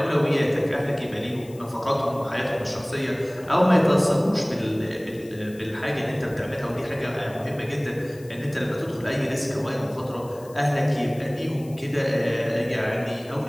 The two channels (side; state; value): left; noise; hiss, 24 dB below the sound